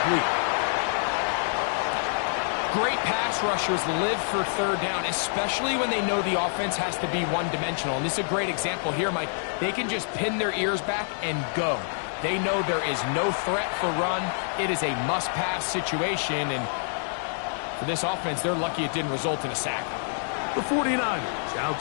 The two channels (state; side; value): silent; right; digital silence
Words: Great pass rushers live for 3rd down, especially when they know the offense has to be one-dimensional. And this is a great example here, Mike. They can just pin their ears back and go. They know there is no threat for run. It is a must-pass situation, and for this offense, they're lucky it didn't result in a sack. The 49ers out